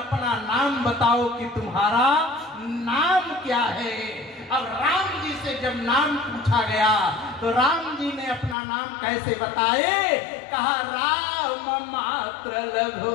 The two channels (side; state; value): right; drops out; at 8.6 s